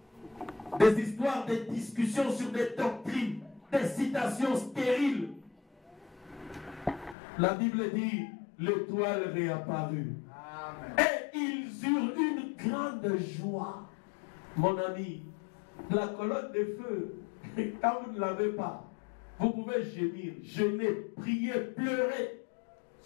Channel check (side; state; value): right; drops out; at 7.2 s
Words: des histoires, des discussions sur des doctrines, des citations stériles, la Bible dit, l'étoile réapparut. Amen. Et ils eurent une grande joie. Mon ami, la colonne de feu, quand vous ne l'avez pas, vous pouvez gémir, jeûner, prier, pleurer.